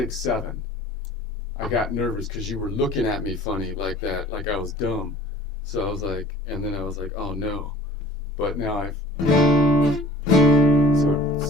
7. I got nervous because you were looking at me funny like that, like I was dumb. So I was like, and then I was like, oh no. But now so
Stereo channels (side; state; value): both; normal; correlation 0.49